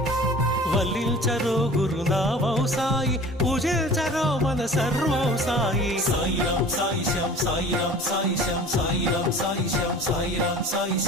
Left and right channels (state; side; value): normal; both; correlation 0.43